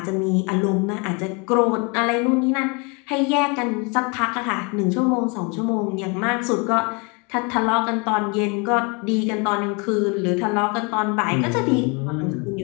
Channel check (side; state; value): right; quieter; 31.1 dB